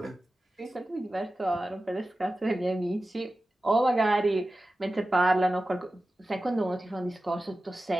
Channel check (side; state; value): both; normal; correlation 0.94